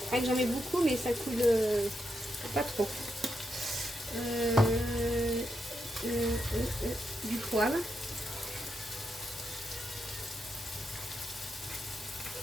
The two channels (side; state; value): both; normal; correlation 0.83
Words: J'en mets beaucoup, mais ça coule pas trop. Du poivre.